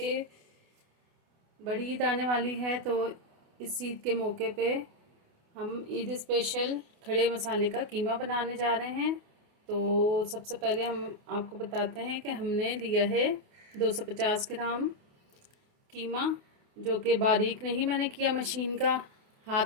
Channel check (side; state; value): left; late; 28 ms